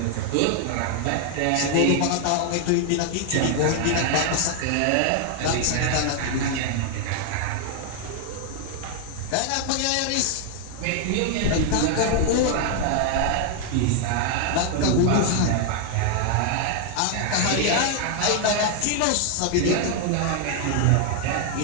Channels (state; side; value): different; both; correlation 0.00